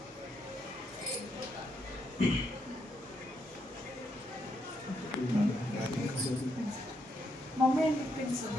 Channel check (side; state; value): both; normal; correlation 0.78